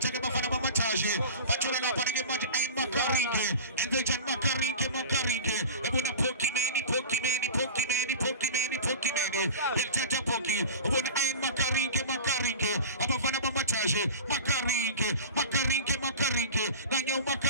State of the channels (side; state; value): both; inverted; correlation -0.35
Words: Bafana Mataji, Machula Panaka Maj and Makarinke, and they can Makarinke, Ebona Pokimeni, El Tata Poki, Ebona Ain Makarinke, Abafana Mataji, Makarinke, Nanyo